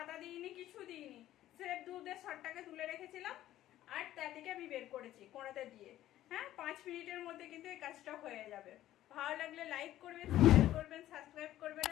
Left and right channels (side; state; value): right; quieter; 13.6 dB